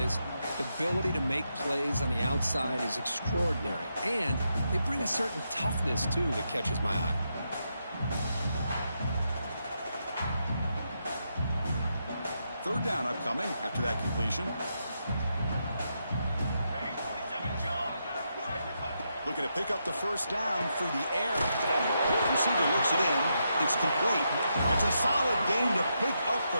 The ability to make plays on the outside is extraordinary. And they bring a certain toughness, too, that catches my eye. Third down upcoming after that completion. Looking to pick up the first down through the air. Receiver looks it in. It's complete. It's a solid gain to pick up the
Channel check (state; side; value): inverted; both; correlation -0.82